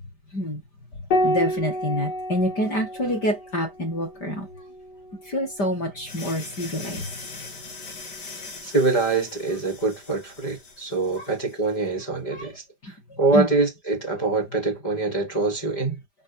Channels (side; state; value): right; late; 5.1 ms